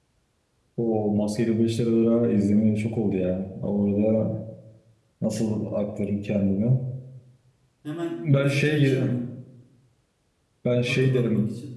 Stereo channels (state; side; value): identical; both; correlation 1.00